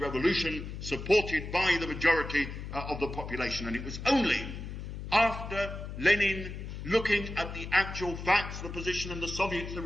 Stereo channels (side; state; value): left; noise; hum, 8 dB below the sound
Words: supported by the majority of the population, and it was only after Lenin, looking at the actual facts, the position in the Soviets, the